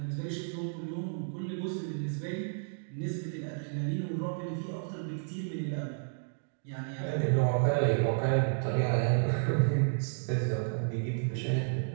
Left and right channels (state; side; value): silent; left; digital silence